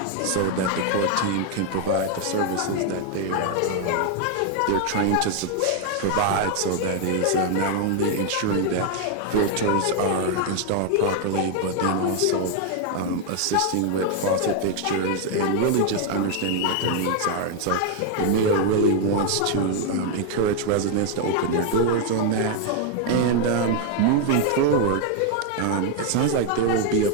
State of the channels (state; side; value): different; both; correlation 0.00